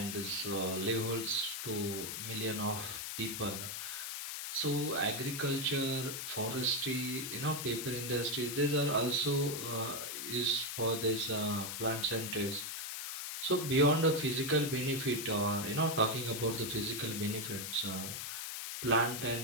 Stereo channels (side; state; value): left; noise; hiss, 5 dB below the sound